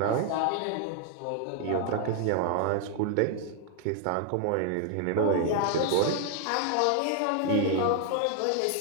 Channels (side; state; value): both; different; correlation 0.00